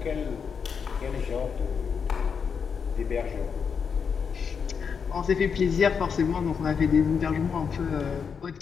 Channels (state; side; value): quieter; right; 6.3 dB